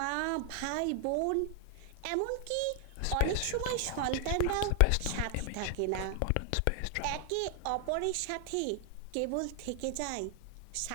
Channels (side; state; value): both; different; correlation 0.00